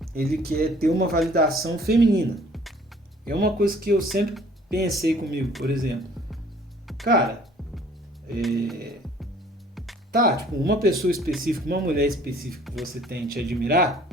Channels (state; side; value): normal; both; correlation 0.55